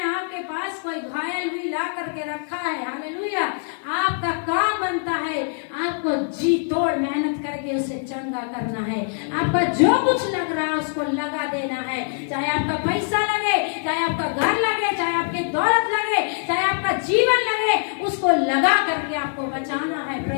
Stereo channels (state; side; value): silent; right; digital silence